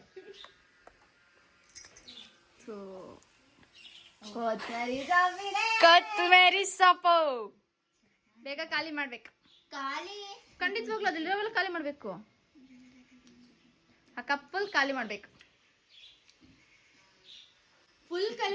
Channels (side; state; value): both; identical; correlation 1.00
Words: ಕೊತ್ತಂಬರಿ ಸೊಪ್ಪು ಬೇಗ ಖಾಲಿ ಮಾಡ್ಬೇಕು. ಖಾಲಿ ಖಂಡಿತವಾಗ್ಲೂ ಅದಿಲ್ಲ, ಖಾಲಿ ಮಾಡ್ಬೇಕು. ಆ ಕಪ್ಪಲ್ ಖಾಲಿ ಮಾಡ್ಬೇಕು. ಫುಲ್